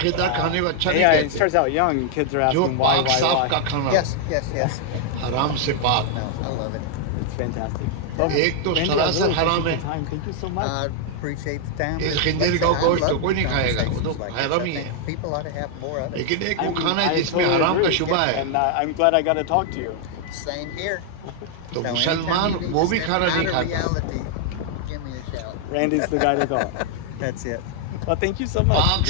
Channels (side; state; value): both; different; correlation 0.00